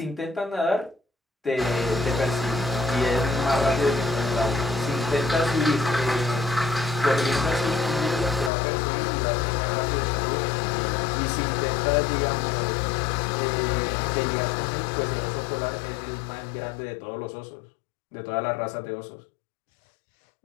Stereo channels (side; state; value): right; drops out; at 8.5 s